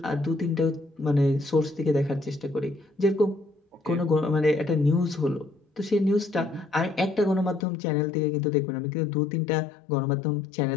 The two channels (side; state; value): right; drops out; at 7.7 s